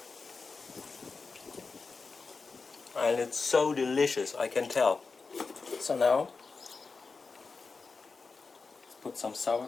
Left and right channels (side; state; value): right; quieter; 4.4 dB